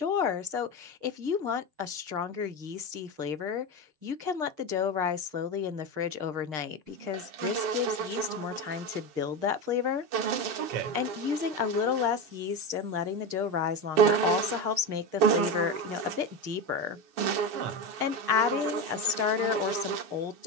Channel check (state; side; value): late; left; 6.5 ms